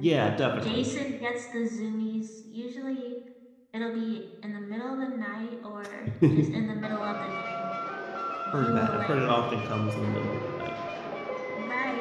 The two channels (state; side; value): identical; both; correlation 1.00